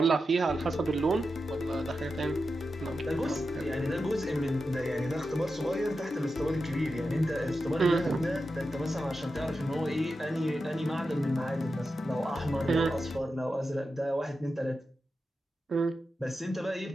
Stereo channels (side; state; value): both; normal; correlation 0.90